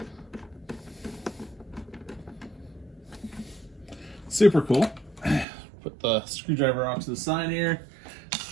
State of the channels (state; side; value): drops out; left; at 5.5 s